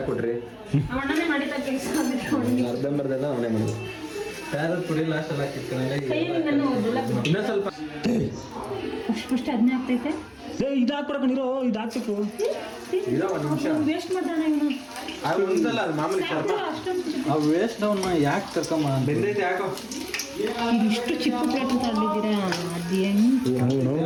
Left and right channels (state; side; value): identical; both; correlation 1.00